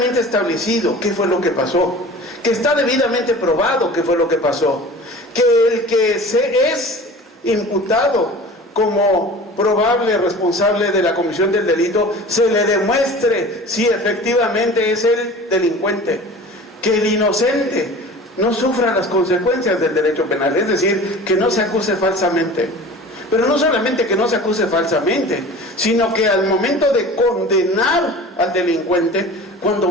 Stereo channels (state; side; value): normal; both; correlation 0.39